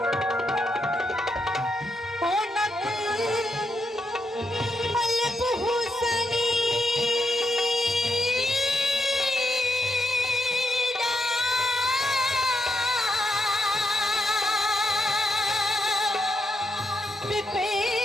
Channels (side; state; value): both; normal; correlation 0.81